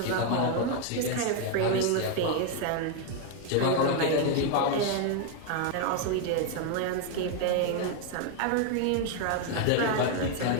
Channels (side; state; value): both; different; correlation 0.01